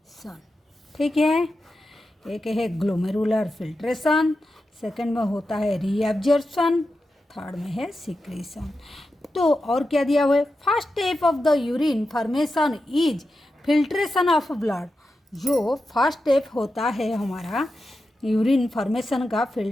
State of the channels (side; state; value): both; normal; correlation 0.90